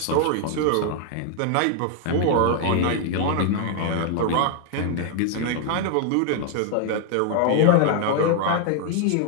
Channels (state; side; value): different; both; correlation 0.00